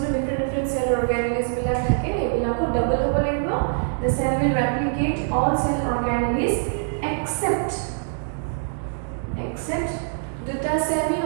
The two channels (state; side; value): silent; left; digital silence